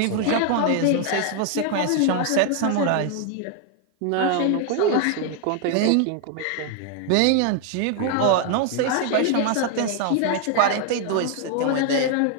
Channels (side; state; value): both; different; correlation 0.00